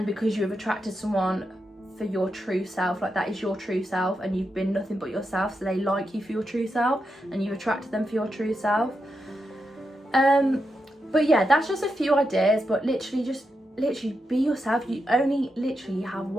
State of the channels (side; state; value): both; normal; correlation 0.86